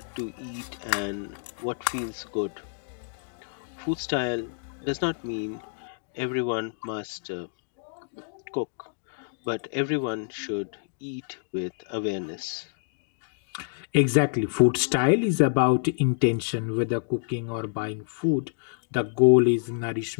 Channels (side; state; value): right; silent; digital silence